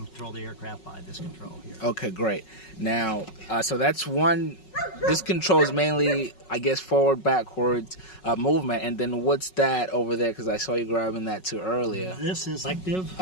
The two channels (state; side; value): late; right; 5.4 ms